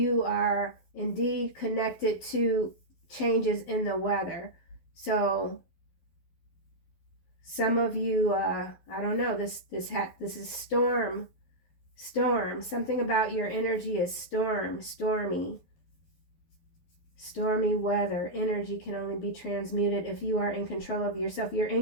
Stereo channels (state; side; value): late; right; 12 ms